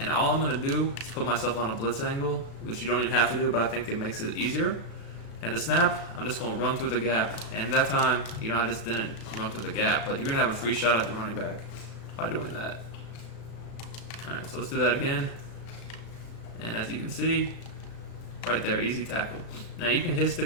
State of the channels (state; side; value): late; right; 35 ms